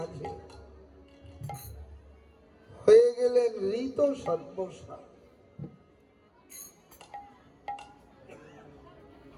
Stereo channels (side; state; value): both; identical; correlation 1.00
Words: হয়ে গেলেন ঋত সর্বসার।